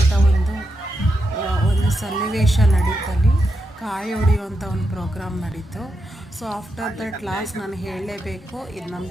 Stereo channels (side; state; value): both; normal; correlation 0.85